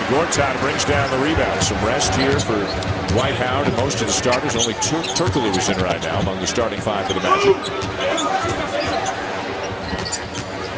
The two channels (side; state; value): both; identical; correlation 1.00